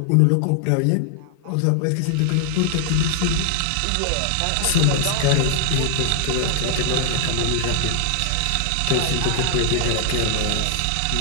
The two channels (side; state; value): both; different; correlation 0.00